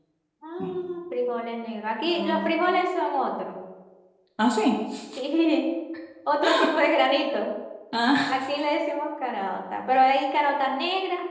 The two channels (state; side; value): identical; both; correlation 1.00